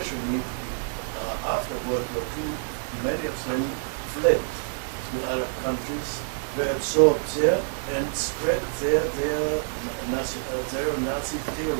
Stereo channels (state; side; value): silent; left; 60 dB below the other